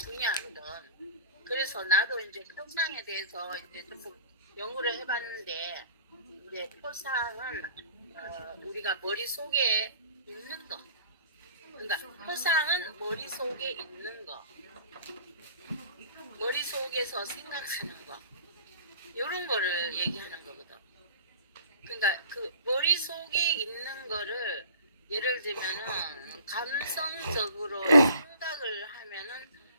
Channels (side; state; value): both; inverted; correlation -0.46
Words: 그래서 나도 이제 표상에 대해서 이제 조금 연구를 해봤는데, 이제 표상은 우리가 머릿속에 있는 거. 그러니까 표상은 머릿속에 있는 거. 머릿속에서 생각하는 거. 이런 거를 얘기하는 거거든. 그러니까 그 머릿속에 있는 거를 예를 들면은 감성적으로 생각을 하면은